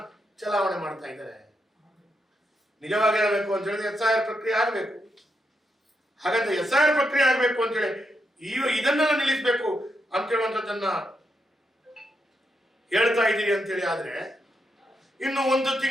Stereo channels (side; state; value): both; normal; correlation 0.82